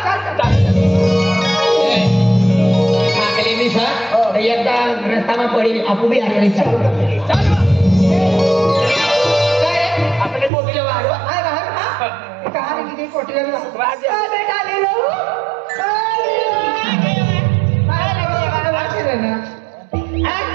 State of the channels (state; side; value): drops out; left; at 10.5 s